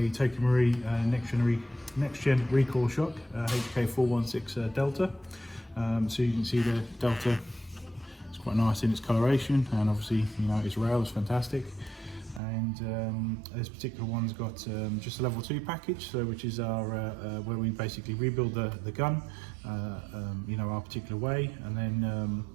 Tokyo Marui next gen recoil shock, HK416 Delta. So you can see the Delta. Quite nice in its coloration, and obviously its rail is fantastic. And this particular one's got just a level 2 package, so which is our where we basically rebuild the gun our particular way, and then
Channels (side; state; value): left; drops out; at 12.4 s